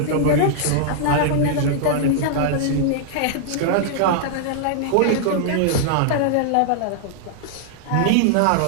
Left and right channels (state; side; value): different; both; correlation -0.01